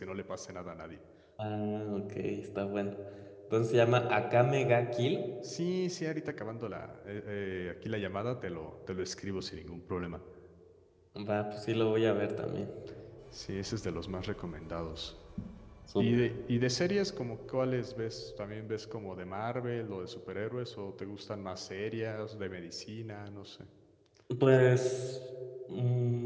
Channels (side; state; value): both; identical; correlation 1.00